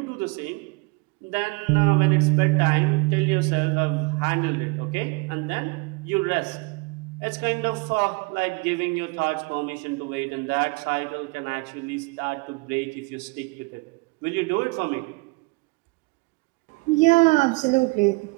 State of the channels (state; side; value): quieter; left; 28.1 dB